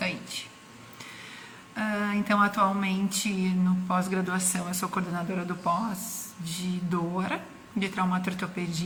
Então, atualmente, no pós-graduação, eu sou coordenadora do pós de dor, de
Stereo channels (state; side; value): identical; both; correlation 1.00